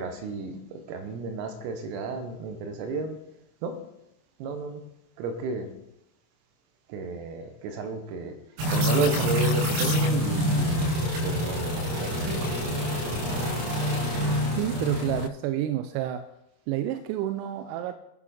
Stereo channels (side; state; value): left; late; 25 ms